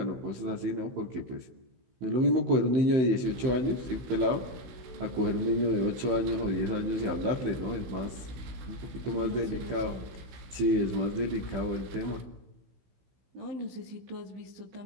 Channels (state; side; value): late; left; 15 ms